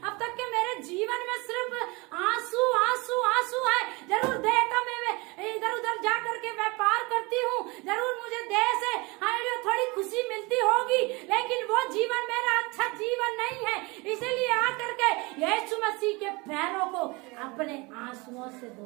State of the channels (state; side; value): quieter; left; 25.9 dB